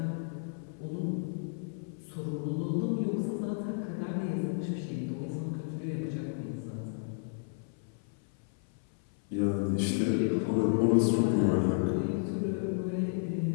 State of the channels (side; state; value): right; silent; 56 dB below the other